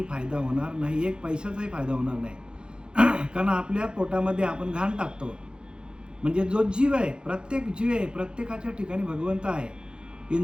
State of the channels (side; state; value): left; late; 0.049 ms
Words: फायदा होणार नाही, एक पैशाचाही फायदा होणार नाही. कारण आपल्या पोटामध्ये आपण घाण टाकतो. म्हणजे जो जीव आहे, प्रत्येक जीव आहे, प्रत्येकाच्या ठिकाणी भगवंत आहे.